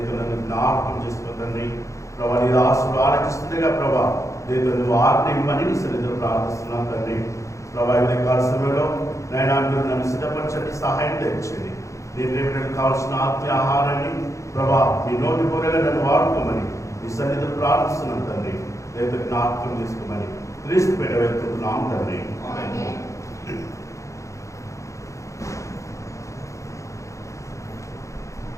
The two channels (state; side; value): late; right; 0.15 ms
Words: జ్ఞాపకం చేసుకో తండ్రి. ప్రభా, నీ ఆశలు ఆలోచిస్తుండగా ప్రభా లేదు నువ్వు ఆజ్ఞ ఇవ్వని నీ సన్నిధిలో ప్రార్థిస్తున్నాను తండ్రి. ప్రభా, ఇది కాల సమయంలో నాయన మీరు నన్ను సిద్ధపరచండి, సహాయం తెచ్చండి. నీ ప్రేమలకు కావాల్సిన ఆత్మీయ ఆహారాన్ని ప్రభా మీ నోటి పొరగా నన్ను వాడుకోమని నీ సన్నిధిలో ప్రార్థిస్తున్నాను తండ్రి. లేదు జ్ఞాపకం చేసుకోమని క్రీస్తు పేట వెళ్తున్నాం తండ్రి.